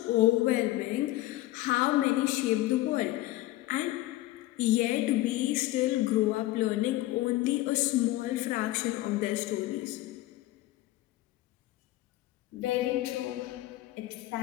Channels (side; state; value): right; quieter; 16.7 dB